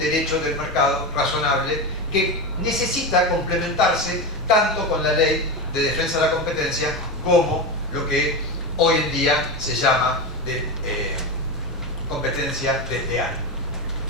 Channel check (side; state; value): both; normal; correlation 0.18